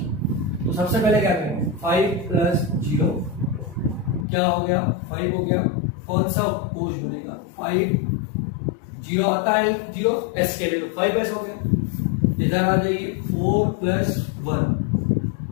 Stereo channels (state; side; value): drops out; right; at 4.2 s